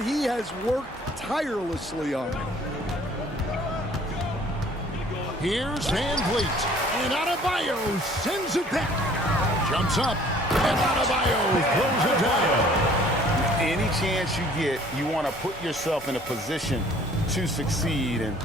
he has worked tirelessly on. Here's VanVleet. And Adebayo sends it back. Jumps up. And Adebayo throws it down. Any chance you get, you want to put yourself in a position to succeed, and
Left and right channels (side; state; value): both; normal; correlation 0.55